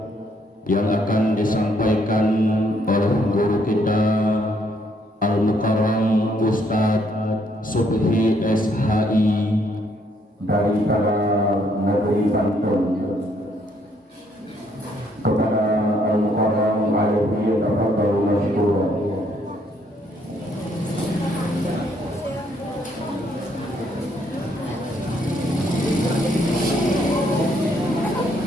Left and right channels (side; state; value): both; normal; correlation 0.69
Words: yang akan disampaikan oleh guru kita Al-Mukarram Ustadz Subhi SHI dari negeri Banten. Kepada Al-Mukarram alaihi tafadhalu masykuran.